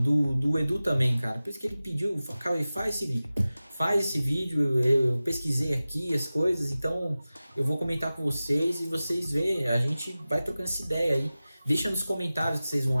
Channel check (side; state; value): both; inverted; correlation -0.96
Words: Edu também, cara. Por isso que ele pediu, Cauê, faz esse vídeo, eu pesquisei aqui as coisas, então eu vou comentar com vocês e vocês veem, a gente vai trocando essa ideia aí. Deixa nos comentários o que vocês vão